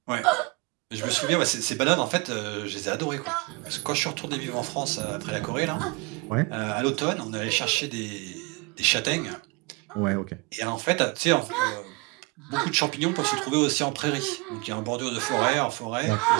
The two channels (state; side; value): quieter; left; 27.3 dB